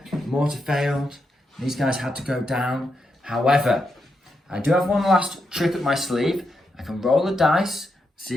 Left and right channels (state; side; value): normal; both; correlation 0.84